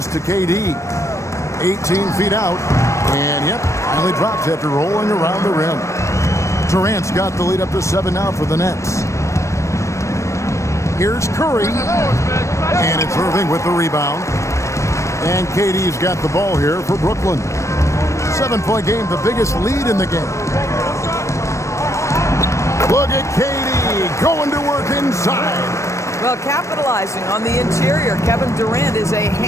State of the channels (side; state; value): right; late; 0.15 ms